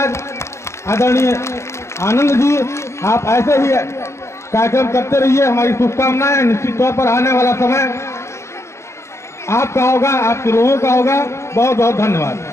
आदरणीय आनंद जी, आप ऐसे ही कार्यक्रम करते रहिए, हमारी शुभकामनाएं। निश्चित तौर पर आने वाला समय आपका होगा, आपके लोगों का होगा। बहुत बहुत धन्यवाद।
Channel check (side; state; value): right; late; 0.13 ms